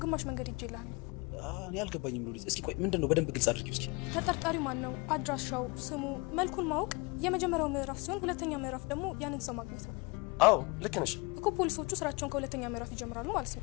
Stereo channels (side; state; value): right; quieter; 27.9 dB